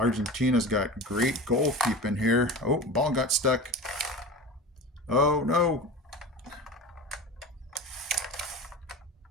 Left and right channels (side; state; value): both; normal; correlation 0.32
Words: got great goalkeeping here. Oh, ball got stuck. Oh, no.